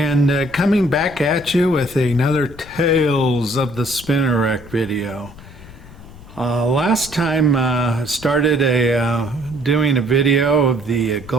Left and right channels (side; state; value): left; noise; rumble, 18 dB below the sound